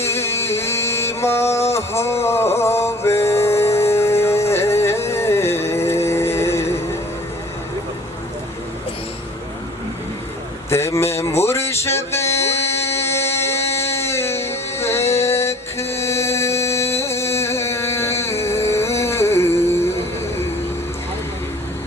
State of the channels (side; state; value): both; normal; correlation 0.49